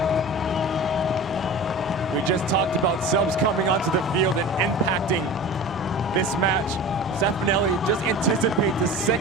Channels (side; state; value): both; normal; correlation 0.35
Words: We just talked about subs coming onto the field and impacting this match. Stefanelli just anticipates the